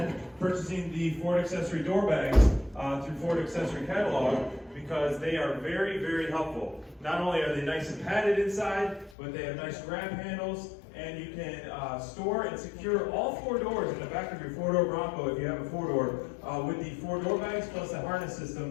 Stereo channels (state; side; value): drops out; right; at 9.2 s